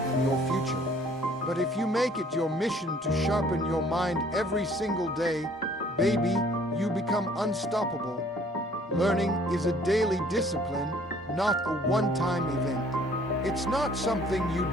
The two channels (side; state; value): both; normal; correlation 0.57